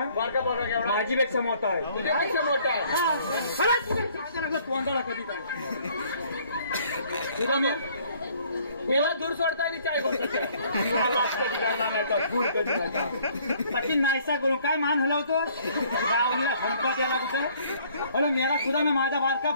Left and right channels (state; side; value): inverted; both; correlation -0.60